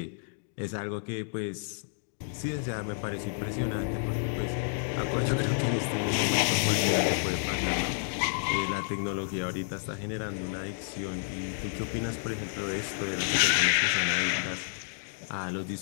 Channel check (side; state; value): right; silent; digital silence